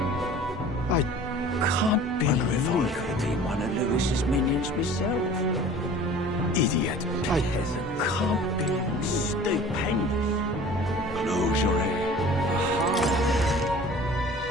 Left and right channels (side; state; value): both; normal; correlation 0.44